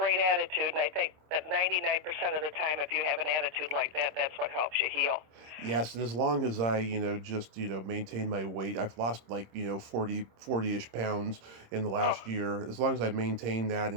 attitude, and I think that 99% of the time, if you have an attitude like that, that's what helps you heal. Yes, and as long as I, just, maintain my weight, I've lost like, 40-ish pounds in the last year. As long as I maintain that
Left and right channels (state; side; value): late; left; 26 ms